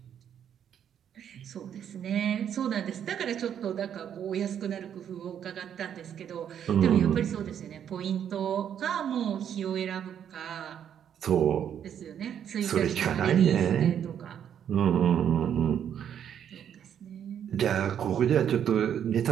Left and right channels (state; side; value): quieter; left; 9.1 dB